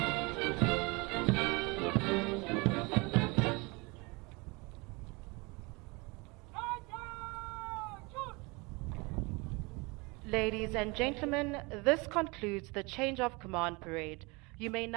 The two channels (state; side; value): quieter; left; 26.9 dB